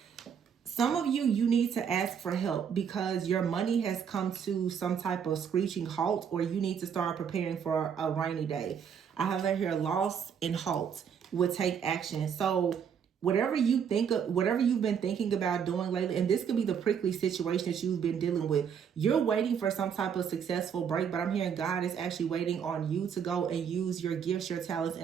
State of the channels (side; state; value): left; quieter; 7.5 dB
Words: Some of you, you need to ask for help because your money has come to some type of screeching halt, or you need to start preparing for a rainy day. I have right here, loss and halt will take action. So whatever you think of, whatever you've been thinking about doing lately, and this could be the prickly situation that you've been dealing with. You're waiting for some type of successful break, but I'm hearing God is actually waiting on you to go and use your gifts, your talents,